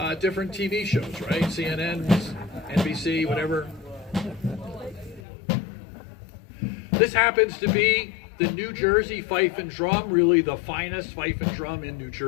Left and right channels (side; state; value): right; drops out; at 5.2 s